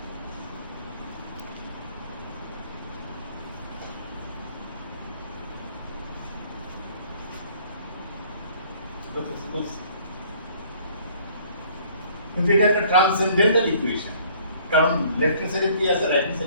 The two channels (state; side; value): inverted; both; correlation -0.57